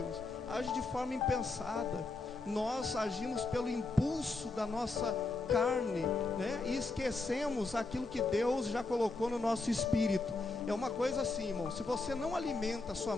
age de forma impensada. Nós agimos pelo impulso da nossa carne, né? E esquecemos aquilo que Deus já colocou no nosso espírito. É uma coisa assim, irmão, se você não alimenta sua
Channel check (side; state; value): right; quieter; 3.5 dB